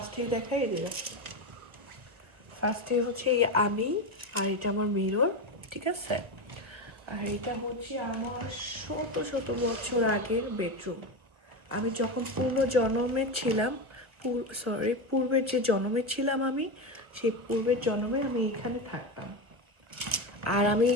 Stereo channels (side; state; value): left; late; 1.3 ms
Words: দেখাই দিলাম। ফার্স্টে হচ্ছে আমি, আর এটা আমার মিরর, ঠিক আছে। আর এটা হচ্ছে আমার শত শত বছর আগের বেডরুম। আমি যখন পূর্বের যে জন্মে ছিলাম আমি, সেই পূর্বের জন্মে আমি এখানে থাকতাম। আর আমি